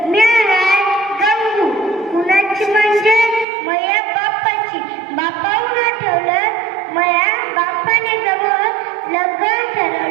मी आहे गंगू. कुणाची म्हणजे माझ्या बाप्पाची. बाप्पाहून आठवलं माझ्या बाप्पाने जवळ लग्न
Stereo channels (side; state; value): left; drops out; at 3.5 s